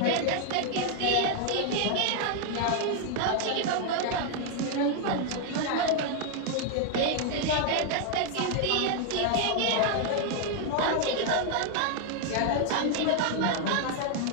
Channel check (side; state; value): both; different; correlation 0.00